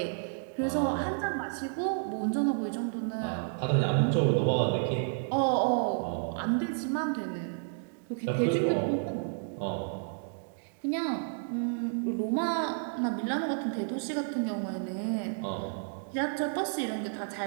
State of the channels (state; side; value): silent; left; digital silence